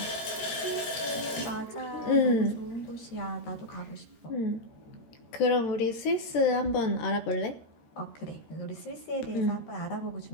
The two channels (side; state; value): right; late; 13 ms